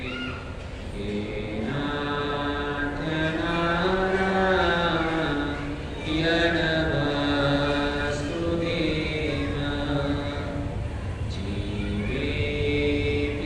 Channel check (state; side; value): identical; both; correlation 1.00